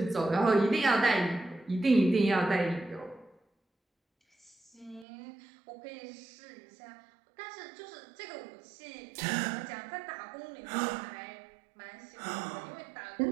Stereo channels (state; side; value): drops out; left; at 5.1 s